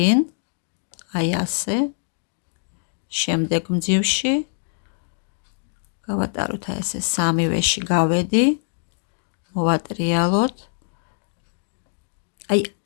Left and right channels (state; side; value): silent; right; digital silence